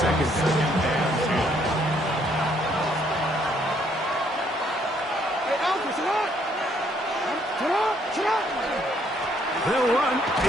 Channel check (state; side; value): normal; both; correlation 0.68